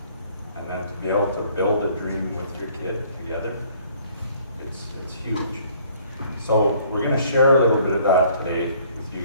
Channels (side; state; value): both; inverted; correlation -0.59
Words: and then to be able to build a dream with your kid together, it's huge. So we're going to share a little bit of that today with you